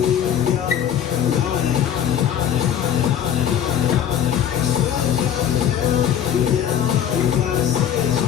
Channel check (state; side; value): quieter; right; 9.7 dB